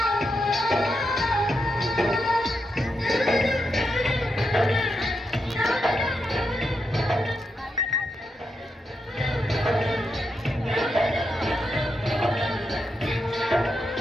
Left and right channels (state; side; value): normal; both; correlation 0.85